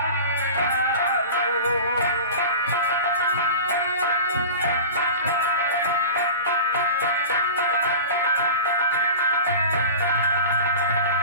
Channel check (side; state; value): both; inverted; correlation -0.34